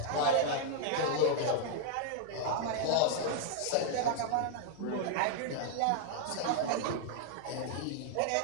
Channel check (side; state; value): both; different; correlation 0.00